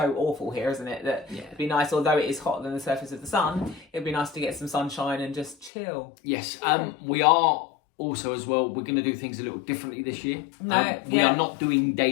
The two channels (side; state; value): right; drops out; at 5.7 s